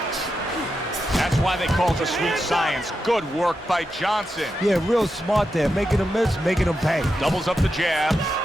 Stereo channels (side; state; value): both; normal; correlation 0.87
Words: That's why they call it the sweet science. Good work by Johnson. Yeah, real smart there. Making him miss, making him pay. Doubles up the jab.